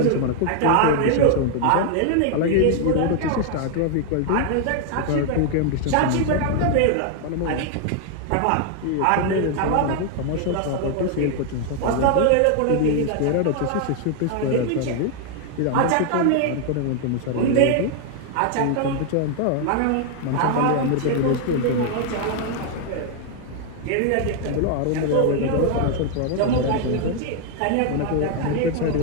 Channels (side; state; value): both; different; correlation 0.00